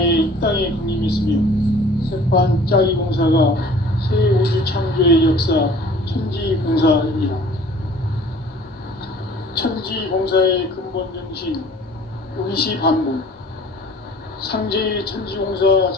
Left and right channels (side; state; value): both; normal; correlation 0.50